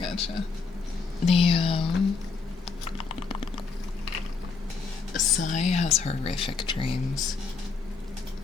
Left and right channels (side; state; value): right; quieter; 4.7 dB